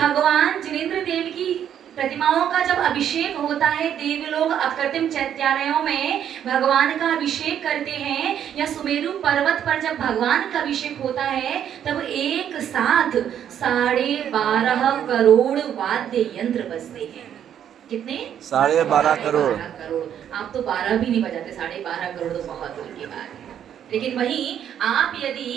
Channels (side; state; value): left; quieter; 9.6 dB